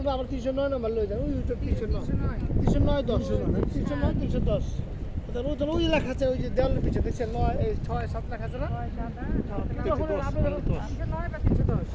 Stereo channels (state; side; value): identical; both; correlation 1.00